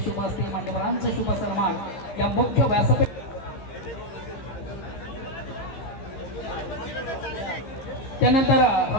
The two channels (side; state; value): right; late; 15 ms